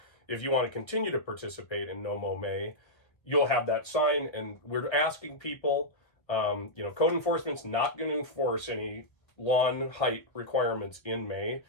if you want to continue to participate in NoMo May, you'll have that sign. And we're asking people, code enforcement's not going to enforce any lawn height requirements in May.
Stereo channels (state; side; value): late; right; 1.0 ms